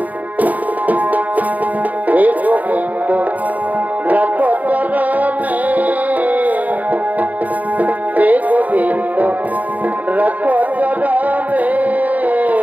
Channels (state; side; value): late; left; 0.076 ms